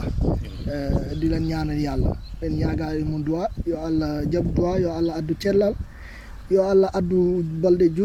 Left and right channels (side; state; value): both; identical; correlation 1.00